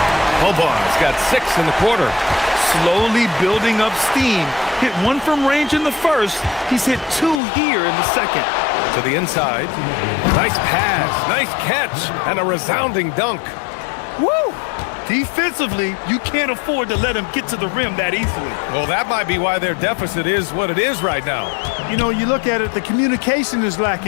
Boban's got 6 in the quarter. Slowly building up steam. Hit 1 from range in the first. He's hit 2 here in the second. To the inside. Nice pass, nice catch, and a resounding dunk. Woo! Defensively, you can't afford to let him get to the rim that easily. Well, that might be why their deficit is what it is right now. You know, you look at it, the communication is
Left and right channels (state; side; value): drops out; right; at 7.4 s